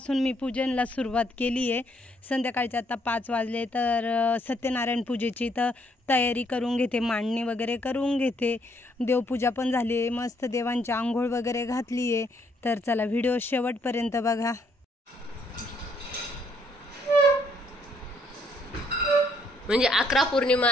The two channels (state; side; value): normal; both; correlation 0.70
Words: मी पूजनला सुरुवात केली आहे. संध्याकाळचे आता 5 वाजले, तर सत्यनारायण पूजेची तर तयारी करून घेते, मांडणी वगैरे करून घेते. देवपूजा पण झाली आहे, मस्त देवांची आंघोळ वगैरे घातली आहे. तर चला व्हिडिओ शेवटपर्यंत बघा. म्हणजे 11 पौर्णिमा